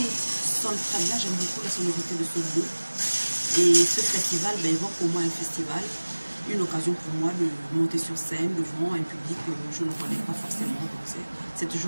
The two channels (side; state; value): both; inverted; correlation -1.00